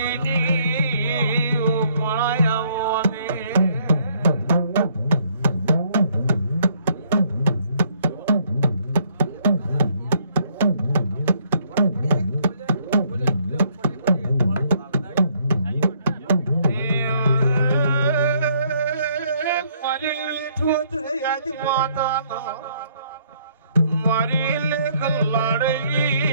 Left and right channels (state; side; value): inverted; both; correlation -0.66